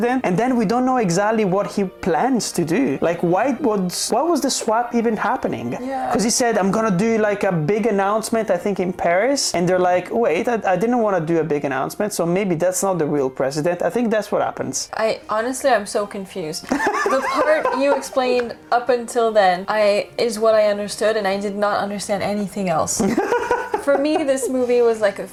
And then we don't know exactly what he plans to do. Like, why was the swap even happening? Yeah. Because he said, I'm gonna do like a big announcement, I think in Paris. And they're like, wait, I didn't want to do a big announcement, so maybe that's not the real president. I think that's what happens. I'm so confused. The part you explained up until then is what I understood, and I did not understand anything else. For me, this movie was like a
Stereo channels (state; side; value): identical; both; correlation 1.00